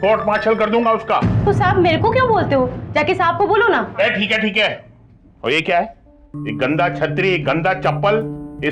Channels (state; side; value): identical; both; correlation 1.00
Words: कोर्ट मार्शल कर दूंगा उसका। तो साहब मेरे को क्यों बोलते हो? जाके साहब को बोलो ना। ठीक है ठीक है। और ये क्या है? ये गंदा छतरी, गंदा चप्पल, ये